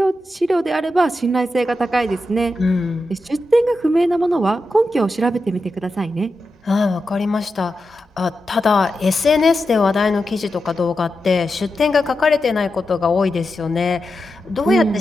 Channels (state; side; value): normal; both; correlation 0.89